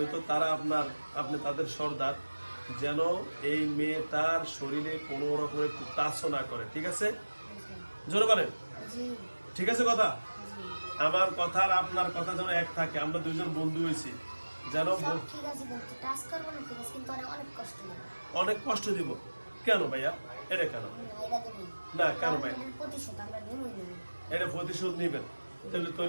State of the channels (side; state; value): both; inverted; correlation -1.00